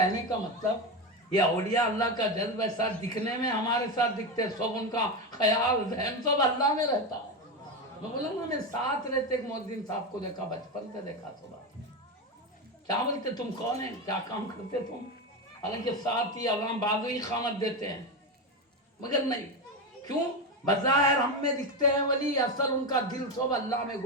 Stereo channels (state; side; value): normal; both; correlation 0.15